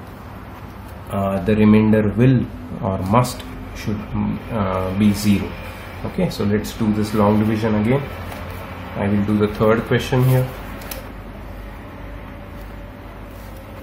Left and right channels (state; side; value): identical; both; correlation 1.00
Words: the remainder will or should be 0. Okay, so let's do this long division again. I will do the third question here.